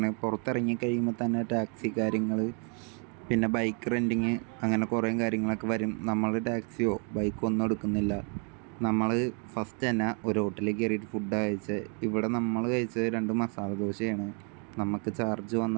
പുറത്തിറങ്ങി കഴിയുമ്പോൾ തന്നെ ടാക്സി കാര്യങ്ങൾ, പിന്നെ ബൈക്ക് റെൻറ്റിങ്, അങ്ങനെ കുറേ കാര്യങ്ങളൊക്കെ വരും. നമ്മൾ ടാക്സിയോ ബൈക്കോ ഒന്നും എടുക്കുന്നില്ല. നമ്മൾ ഫസ്റ്റ് തന്നെ ഒരു ഹോട്ടലിൽ കയറിയിട്ട് ഫുഡ് കഴിച്ചത്. ഇവിടെ നമ്മൾ കഴിച്ചത് 2 മസാല ദോശയാണ്. നമുക്ക് ചാർജ്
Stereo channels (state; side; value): quieter; left; 38.3 dB